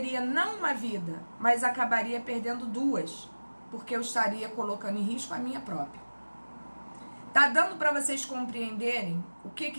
não uma vida, mas acabaria perdendo duas, porque eu estaria colocando em risco a minha própria. Tá dando para vocês compreenderem o que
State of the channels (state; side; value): inverted; both; correlation -1.00